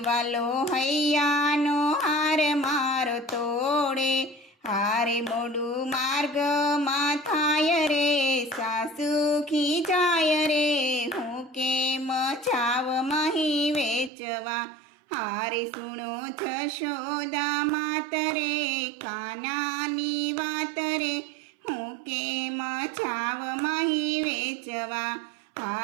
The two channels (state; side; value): drops out; left; at 14.1 s